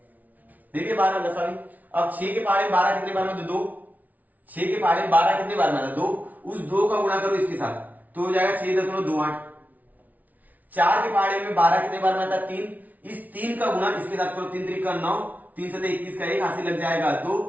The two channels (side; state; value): left; late; 0.076 ms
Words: देखिए 12 लसावी। अब 6 के पहाड़े 12 कितने बार में, 2। 6 के पहाड़े 12 कितने बार में आता, 2। उस 2 का गुणा करो इसके साथ तो हो जाएगा 6.28। 4 के पहाड़े में 12 कितने बार में आता, 3। इस 3 का गुणा इसके साथ करो, 3 3 का 9, 3 7 21 का 1 हासिल लग जाएगा